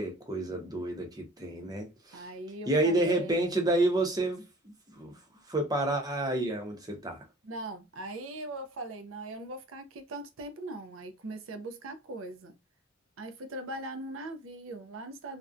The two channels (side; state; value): both; normal; correlation 0.46